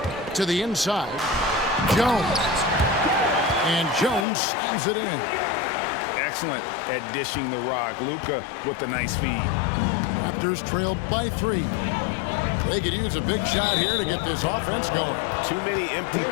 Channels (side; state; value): right; drops out; at 4.2 s